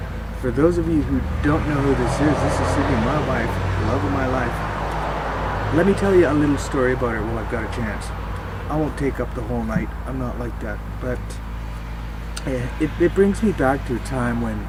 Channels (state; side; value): identical; both; correlation 1.00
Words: For those of you who don't know who this is Cyndy, my wife, the love of my life. Let me tell you a little story about her while I've got a chance. I won't take up the whole night, I'm not like that, but it brings me back to a time when